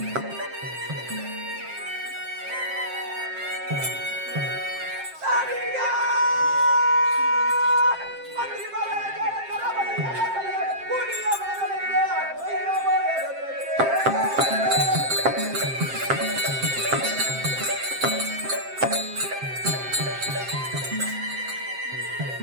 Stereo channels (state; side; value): late; left; 7.6 ms